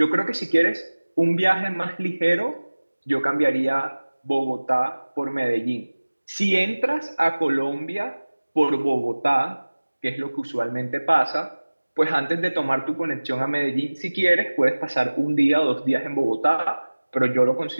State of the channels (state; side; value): inverted; both; correlation -1.00